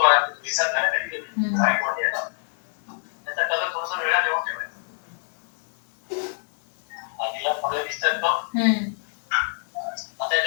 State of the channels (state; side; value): silent; right; 61 dB below the other